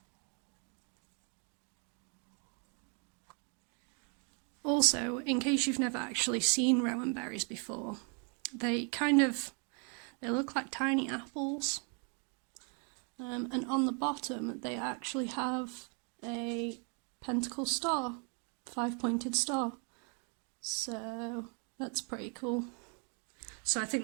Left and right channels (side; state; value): left; quieter; 37.9 dB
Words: Also, in case you've never actually seen rowan berries before, they look like tiny apples. And on the bottom they actually have a pentacle star, 5-pointed star. So that's pretty cool. So I think